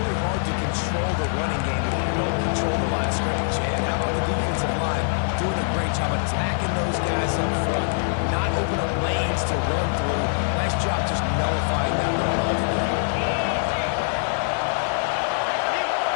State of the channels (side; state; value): right; silent; 63 dB below the other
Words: control the running game if you don't control the line of scrimmage. And how about the defensive line doing a great job attacking those guys up front, not open up lanes to run through. Nice job just nullifying that run altogether.